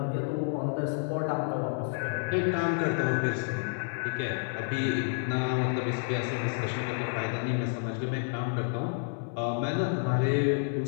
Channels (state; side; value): silent; right; 58 dB below the other